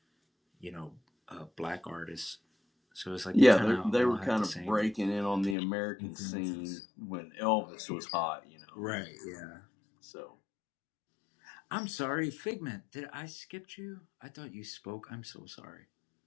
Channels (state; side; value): drops out; right; at 5.6 s